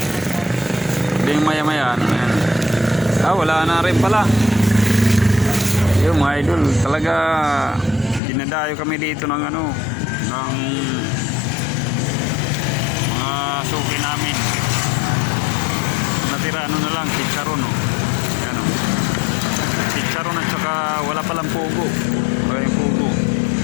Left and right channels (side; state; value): right; drops out; at 8.2 s